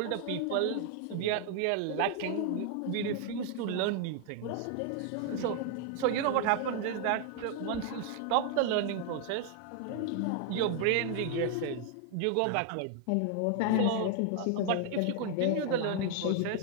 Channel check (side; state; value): both; different; correlation 0.00